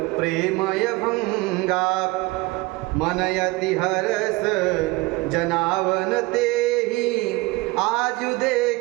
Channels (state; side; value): quieter; left; 22.9 dB